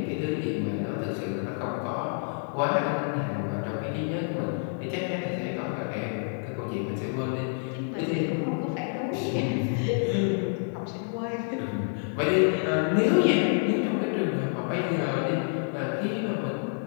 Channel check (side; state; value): right; silent; 59 dB below the other